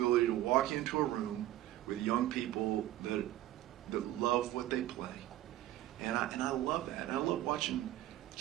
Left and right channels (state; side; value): quieter; left; 14.3 dB